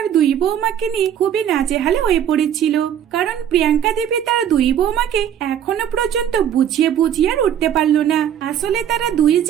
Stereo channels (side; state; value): left; quieter; 9.6 dB